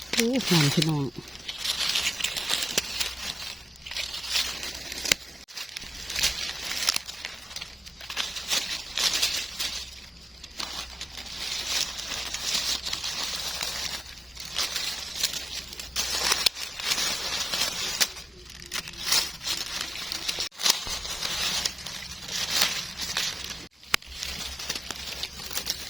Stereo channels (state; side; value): normal; both; correlation 0.95